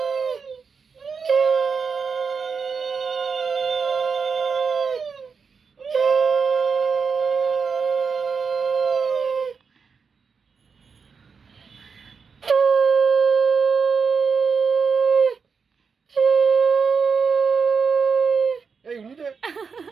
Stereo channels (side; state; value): left; quieter; 5.5 dB